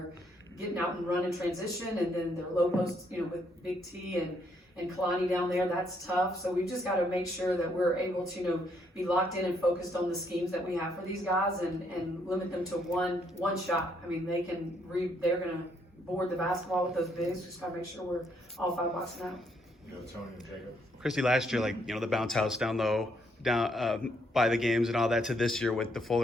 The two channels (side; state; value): both; normal; correlation 0.72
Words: getting out and run in transition, and then their low post, with Big T and Kalani down there. That's tough. So we've just got to make sure that we're able to, be locked in and focused on the schemes that we have for these guys, and limit them to one shot. They're going to board the basketball with those bigs. Just got to make sure we're all five boxing out. Tony and Jacob. Christy, last year, the bounce house down low, by the games and all that, to this year with the full